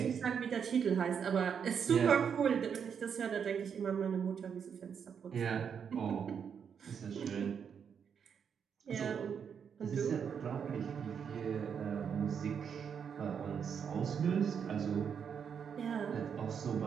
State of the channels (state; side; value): quieter; left; 7.2 dB